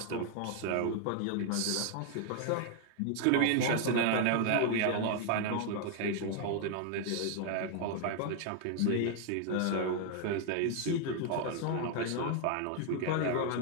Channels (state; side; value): different; both; correlation 0.00